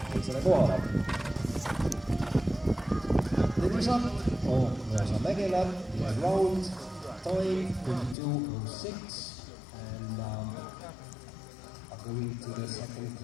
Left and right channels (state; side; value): drops out; right; at 8.2 s